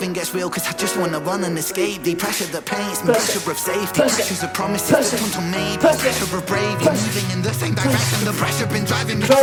gets real, cause I just wanna run and escape thee. Pressure that paints me, pressure of safety, pressures of promises that turn to maybe, pressure of bravely moving in the same direction. The pressure been driving me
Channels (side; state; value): both; identical; correlation 1.00